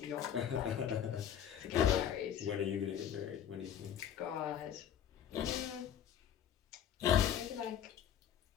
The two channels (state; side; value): quieter; right; 9.5 dB